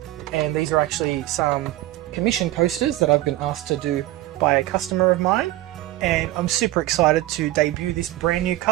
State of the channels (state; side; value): quieter; left; 16.2 dB